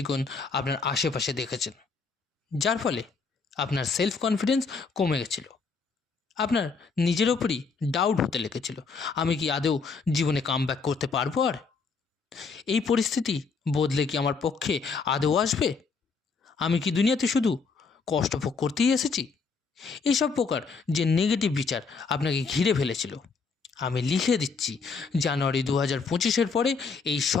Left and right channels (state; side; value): quieter; right; 4.9 dB